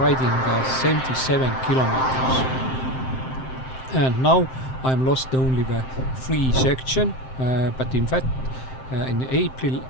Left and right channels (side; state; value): right; late; 7.7 ms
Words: 77 kilometers. And now I'm lost only the 3 section, but in fact in April